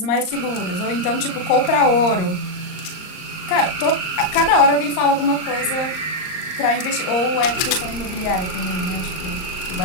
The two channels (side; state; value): right; late; 38 ms